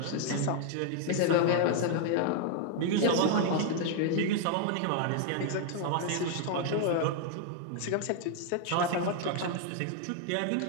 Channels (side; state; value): both; different; correlation 0.00